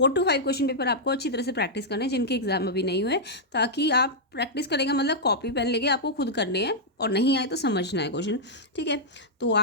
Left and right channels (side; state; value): both; normal; correlation -0.07